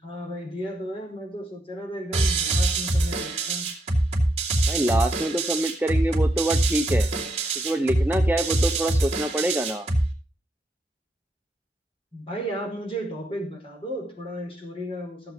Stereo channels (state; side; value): normal; both; correlation 0.79